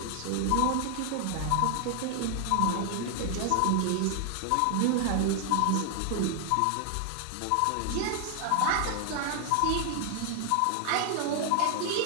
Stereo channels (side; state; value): both; different; correlation 0.00